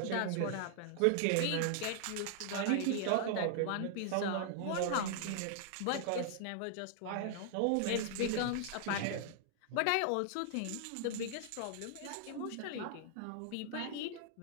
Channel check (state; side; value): different; both; correlation 0.00